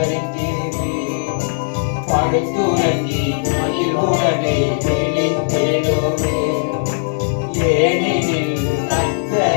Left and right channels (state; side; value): silent; right; digital silence